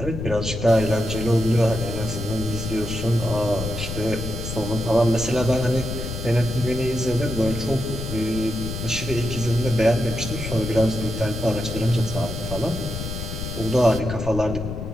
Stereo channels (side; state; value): left; noise; rumble, 6 dB below the sound